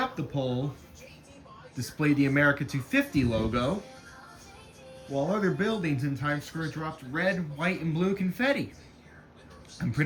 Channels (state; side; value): identical; both; correlation 1.00